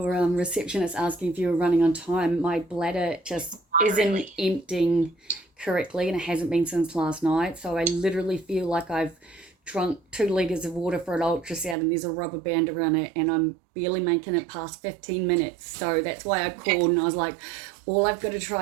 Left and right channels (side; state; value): left; drops out; at 11.8 s